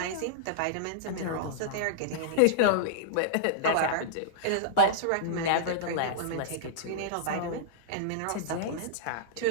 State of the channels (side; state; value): both; different; correlation -0.02